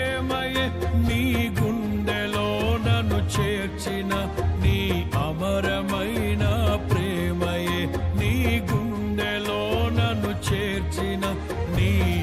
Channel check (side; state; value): both; identical; correlation 1.00